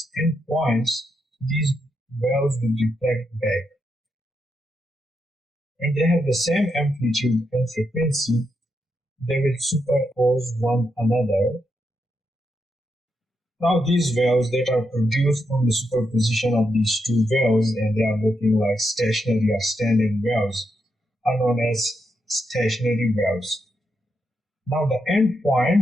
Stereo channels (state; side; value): normal; both; correlation 0.82